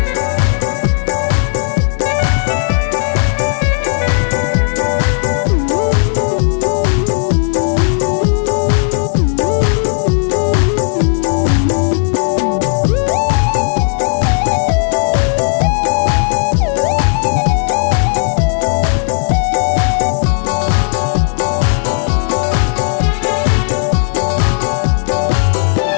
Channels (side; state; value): right; silent; digital silence